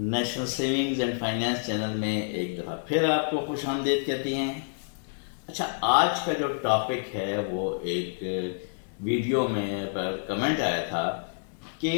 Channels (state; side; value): silent; right; digital silence